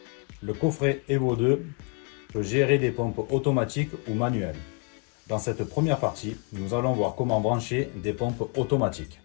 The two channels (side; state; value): right; quieter; 34.9 dB